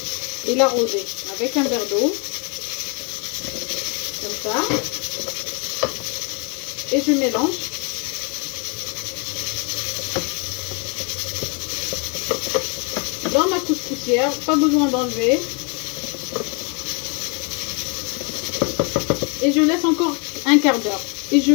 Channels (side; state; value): right; quieter; 33.6 dB